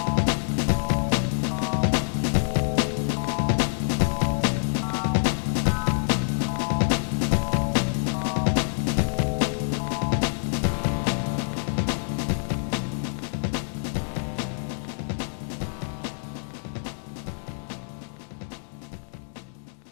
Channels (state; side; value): silent; right; digital silence